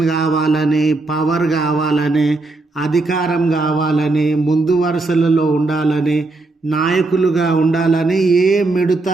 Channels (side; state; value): left; quieter; 3.3 dB